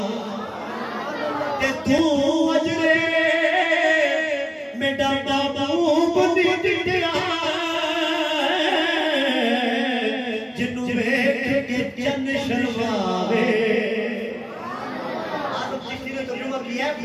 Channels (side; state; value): both; identical; correlation 1.00